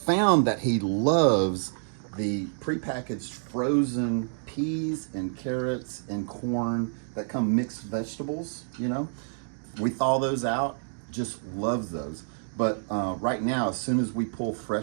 that he loves the prepackaged frozen peas and carrots and corn that come mixed vegetables, We thaw those out, just loves those. But right now, as soon as we pull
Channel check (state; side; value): silent; left; digital silence